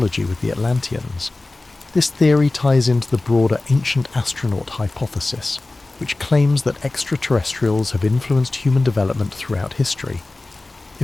with the Atlanteans. This theory ties into the broader ancient astronaut hypothesis, which claims that extraterrestrials have influenced human development throughout history.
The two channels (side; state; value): right; quieter; 3.1 dB